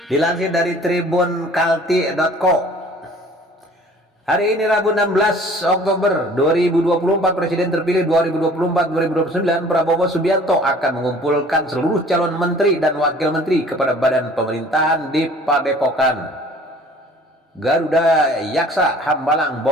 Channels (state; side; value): normal; both; correlation 0.50